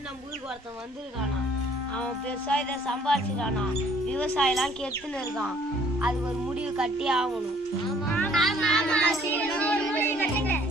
நம்ம ஊருக்கு ஒருத்தன் வந்திருக்கானா. அவன் பெருசா இதை சம்பாதிச்சிருக்கானா. விவசாயம்லாம் கெடுத்துன்னு இருக்கான். அதுக்கு ஒரு முடிவு கட்டி ஆகணும்.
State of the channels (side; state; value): both; normal; correlation 0.59